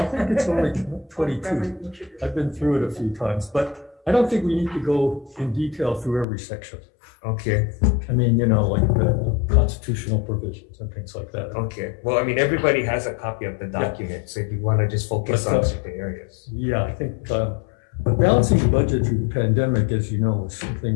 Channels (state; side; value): drops out; right; at 6.2 s